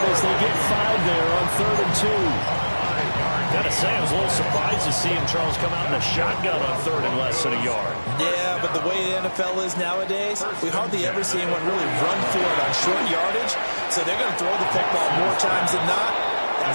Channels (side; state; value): both; inverted; correlation -1.00